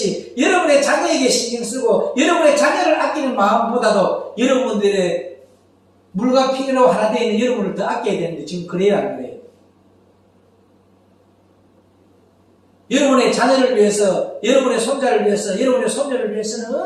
여러분의 자녀에게 신경 쓰고 여러분의 자녀를 아끼는 마음보다도 여러분들의 물과 피로 하나 되어 있는 여러분을 더 아껴야 되는데 지금 그래요 안 그래요? 여러분의 자녀를 위해서, 여러분의 손자를 위해서, 여러분의 손녀를 위해서는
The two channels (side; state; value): both; identical; correlation 1.00